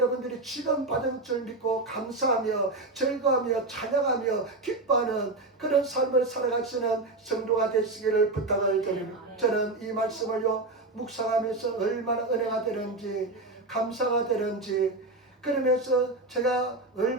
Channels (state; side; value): quieter; left; 3.1 dB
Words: 지금 받은 줄 믿고 감사하며 즐거워하며 찬양하며 기뻐하는 그런 삶을 살아가시는 성도가 되시기를 부탁을 드립니다. 저는 이 말씀을요 묵상하면서 얼마나 은혜가 되는지 감사가 되는지 그러면서 제가